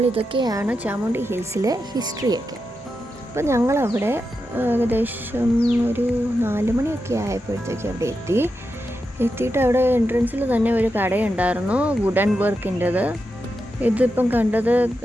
ഇതൊക്കെയാണ് ചാമുണ്ഡി ഹിൽസിലെ ഹിസ്റ്ററിയൊക്കെ. അപ്പോൾ ഞങ്ങളവിടെ ഏകദേശം ഒരു 4 മണിയൊക്കെ ആയപ്പോഴത്തേക്ക് അവിടെ എത്തിയിട്ട് അവിടെ എൻട്രൻസിൽ തന്നെ ഒരു കടയുണ്ടായിരുന്നു, വുഡൻ വർക്കിൻ്റെത്. ഇതിപ്പം കണ്ടത്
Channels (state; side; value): normal; both; correlation 0.88